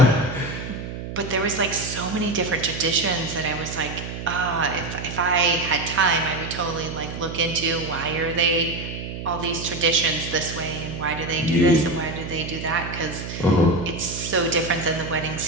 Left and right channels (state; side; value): noise; right; hum, 8 dB below the sound